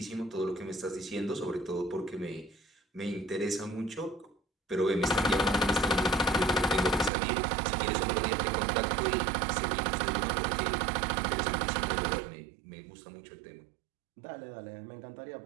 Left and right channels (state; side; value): drops out; left; at 7.1 s